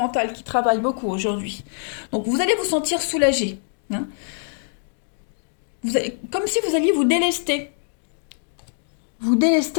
qui travaille beaucoup aujourd'hui. Donc vous allez vous sentir soulagé. Comme si vous alliez vous délester. Vous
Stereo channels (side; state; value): right; silent; 63 dB below the other